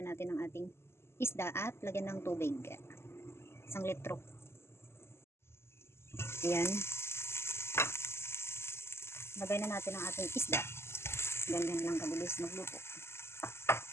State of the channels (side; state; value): right; late; 0.12 ms